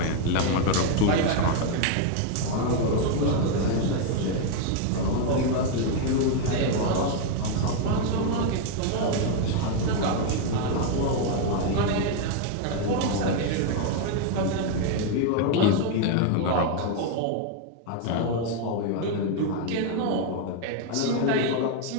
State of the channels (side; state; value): both; different; correlation 0.01